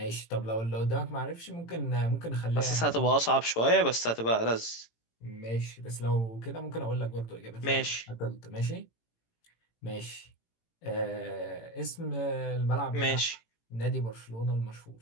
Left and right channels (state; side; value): late; right; 18 ms